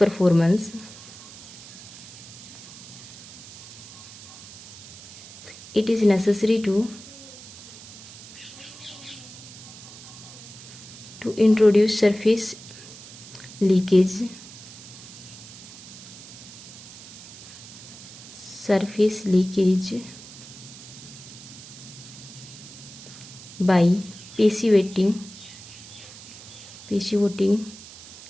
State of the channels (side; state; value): right; noise; hiss, 16 dB below the sound